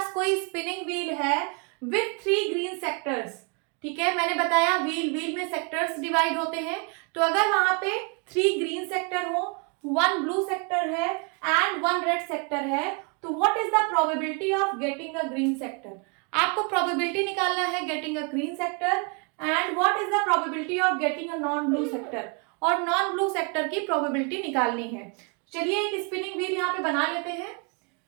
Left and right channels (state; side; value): quieter; left; 34.1 dB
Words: कोई स्पिनिंग व्हील है विथ 3 ग्रीन सेक्टर्स, ठीक है, मैंने बताया व्हील में सेक्टर्स डिवाइड होते हैं, तो अगर वहां पे 3 ग्रीन सेक्टर हो, 1 ब्लू सेक्टर है एंड 1 रेड सेक्टर है, तो what is the probability of getting a green sector? आपको प्रोबेबिलिटी निकालना है getting a green sector and what is the probability of getting a non blue sector, और non blue sector की probability निकालनी है। चलिए एक स्पिनिंग व्हील यहाँ पे बना लेते हैं।